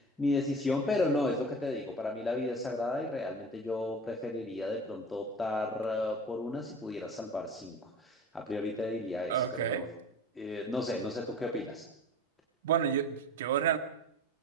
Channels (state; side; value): normal; both; correlation 0.37